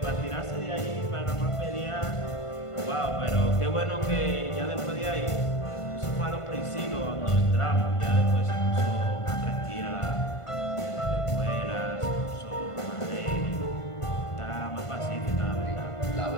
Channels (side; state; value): right; late; 1.5 ms